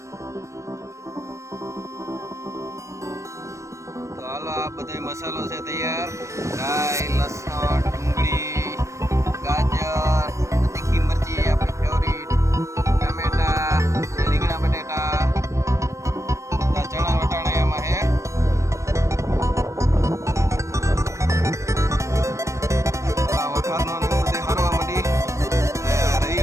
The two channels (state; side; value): late; left; 0.15 ms